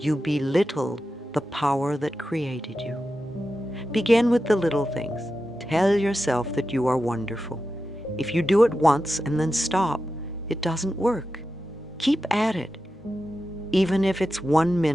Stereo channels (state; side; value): normal; both; correlation 0.91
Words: belittle the power that created you. Begin with the little things. Tell yourself that you are wonderful. If you do it once and then stop, it doesn't work. Keep at it, even if it's 1